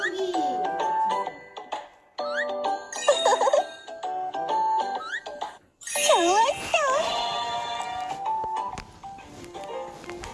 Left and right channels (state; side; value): identical; both; correlation 1.00